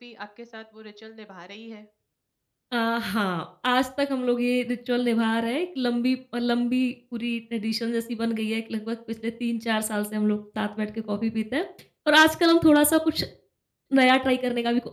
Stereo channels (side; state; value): both; identical; correlation 1.00